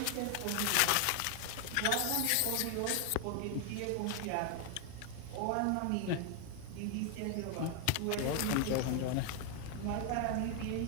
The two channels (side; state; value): both; different; correlation 0.01